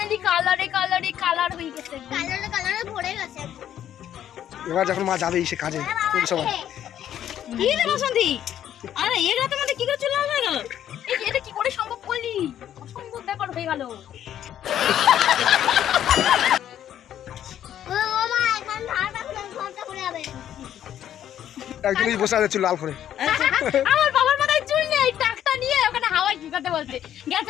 কালারে কালারে কালার হয়ে গেছে, কালারে কালারে ভরে গেছে। এবার যখন মা যাবে সে কাজে সময় কি রে বসন্তী, আরে এই রাতে মধ্যে কি করে চলে হয়ে গেল? এটা কি করে সম্ভব করলি? অসম্ভব ব্যাপার হয়ে গেল। একদিনই বসে আছে চুল লাল করে। আমার বাবার মাথায় চুল নেই, টাকটা নিয়ে ওখানে হাওয়ায় শুকাতে বলছে গেছে।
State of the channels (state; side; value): quieter; right; 10.7 dB